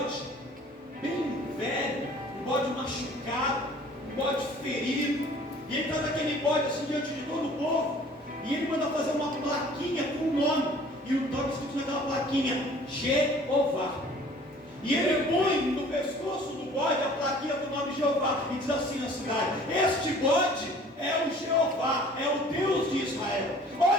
bem velho, um bode machucado, um bode ferido, e ele traz aquele bode assim diante de todo o povo, e ele manda fazer uma plaquinha com o nome, e o nome escrito naquela plaquinha: Jeová. E ele põe no pescoço do bode a plaquinha do nome Jeová e diz assim na cidade: este bode é o Jeová, é o Deus de Israel.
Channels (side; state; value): both; normal; correlation 0.51